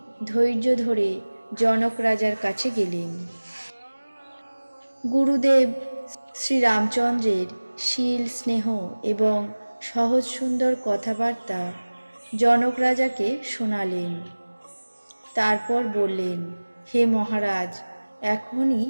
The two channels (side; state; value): both; inverted; correlation -1.00